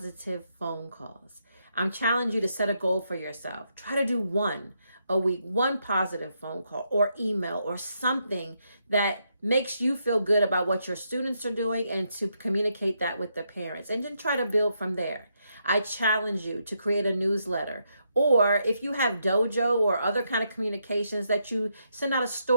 phone calls. I'm challenging you to set a goal for yourself. Try to do one, a week, one positive phone call or email or something that makes you feel good about what your students are doing, and to communicate that with the parents, and then try to build from there. I challenge you to create a newsletter, or if you have Dojo or other kind of communications, that you send out a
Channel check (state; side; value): inverted; both; correlation -0.79